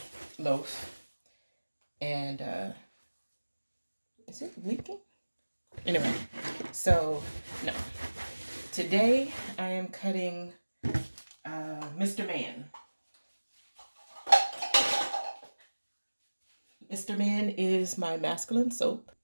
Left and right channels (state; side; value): inverted; both; correlation -1.00